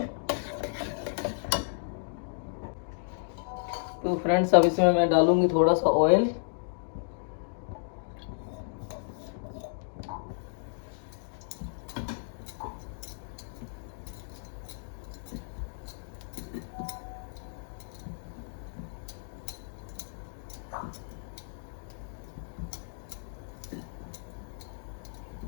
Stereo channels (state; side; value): silent; right; digital silence